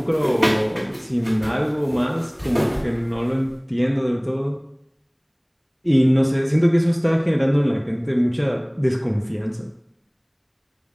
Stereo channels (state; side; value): identical; both; correlation 1.00